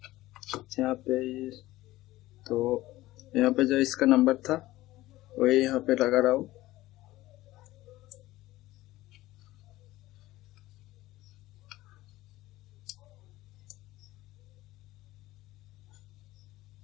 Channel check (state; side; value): quieter; right; 17.1 dB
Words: यहाँ पे जो इसका नंबर था वही यहाँ पे लगा रहा हूँ।